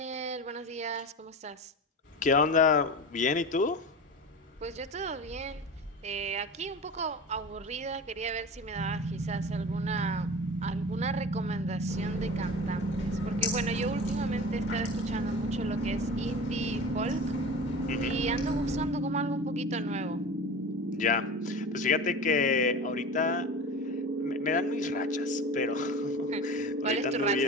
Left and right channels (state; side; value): normal; both; correlation 0.32